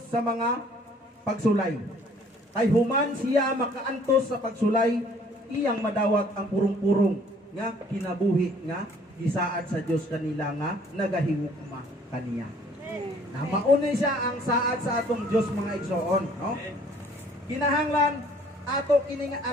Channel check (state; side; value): normal; both; correlation 0.58